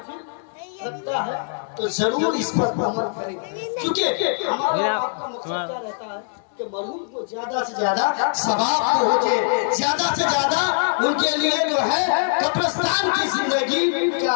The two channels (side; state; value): right; silent; 63 dB below the other